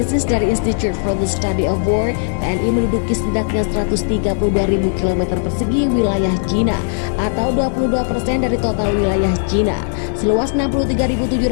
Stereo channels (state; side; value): silent; right; digital silence